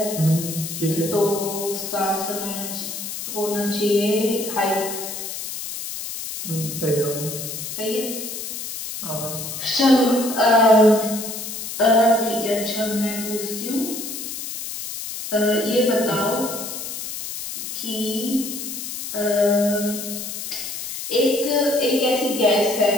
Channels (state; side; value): noise; left; hiss, 7 dB below the sound